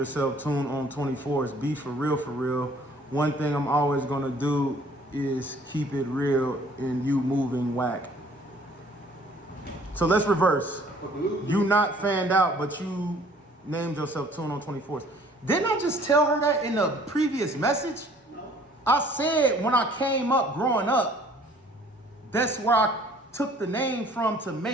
Tune on 24s. Be for real, for real. One thing I'm always gonna do is keep it real and you moving whack. So let's reverse. You not fanned out, but you named yourself Tune on 24s. Didn't I just tell her that in the previous message? No. I said when I came up growing up, that's where I took the name from to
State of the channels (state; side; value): normal; both; correlation 0.56